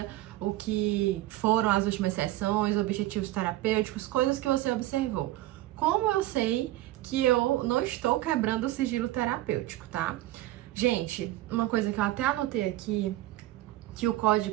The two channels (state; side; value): quieter; left; 16.0 dB